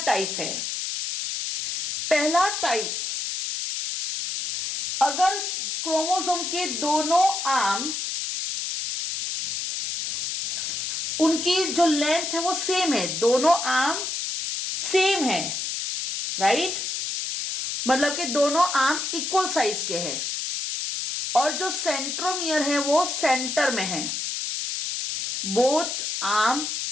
टाइप हैं। पहला टाइप, अगर क्रोमोसोम के दोनों आर्म उनकी जो लेंथ है वो सेम है, दोनों आर्म सेम है, राइट, मतलब कि दोनों आर्म इक्वल साइज के हैं और जो सेंट्रोमियर है वो सेंटर में है, बोथ आर्म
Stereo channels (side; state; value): left; noise; hiss, 3 dB below the sound